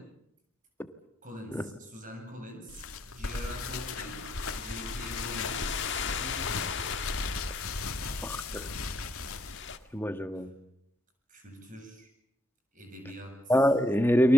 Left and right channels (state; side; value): normal; both; correlation 0.75